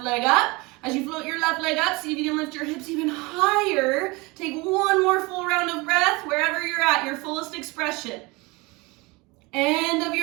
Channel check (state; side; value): quieter; left; 24.7 dB